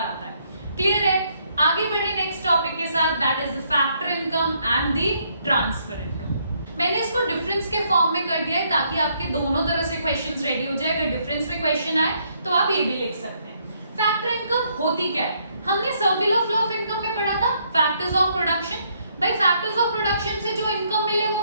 है। क्लियर है? आगे बढ़े नेक्स्ट टॉपिक के साथ, that is the factor income and the transfer income. मैंने इसको डिफरेंस के फॉर्म में कर दिया है ताकि आपके दोनों तरह से क्वेश्चंस रेडी हो जाए। अगर डिफरेंस में क्वेश्चन आए तो आप ये भी लिख सकते हैं। फैक्टर इनकम होती क्या है? हमने सर्कुलर फ्लो ऑफ इनकम में पढ़ा था फैक्टर्स ऑफ प्रोडक्शन। भाई फैक्टर्स ऑफ प्रोडक्शन से जो इनकम मिले वो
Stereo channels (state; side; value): inverted; both; correlation -0.71